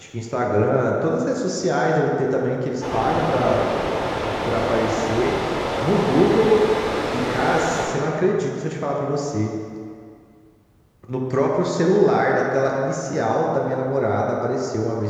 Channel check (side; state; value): both; identical; correlation 1.00